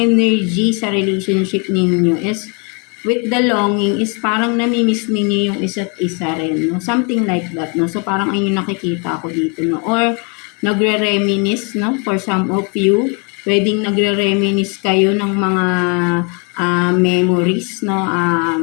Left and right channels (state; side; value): quieter; right; 34.6 dB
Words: sa relationship ninyo is with the longing is parang namimiss ninyo yung isa't isa rin no, something like that no. So parang ayun yung nakikita ko dito no, or nagre-reminisce no, for some of you pwedeng nagre-reminisce kayo ng mga memories no